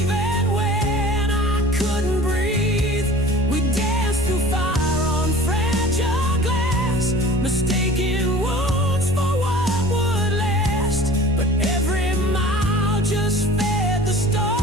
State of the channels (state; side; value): normal; both; correlation 0.43